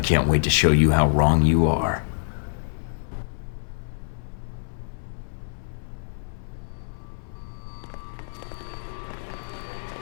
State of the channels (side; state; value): right; silent; 61 dB below the other